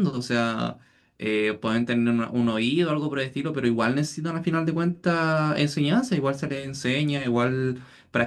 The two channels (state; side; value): identical; both; correlation 1.00